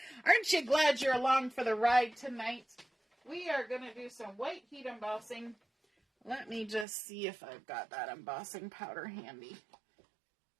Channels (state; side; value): drops out; left; at 6.9 s